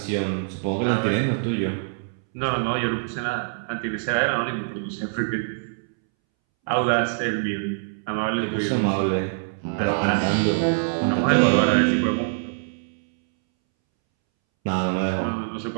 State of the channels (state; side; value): silent; left; 62 dB below the other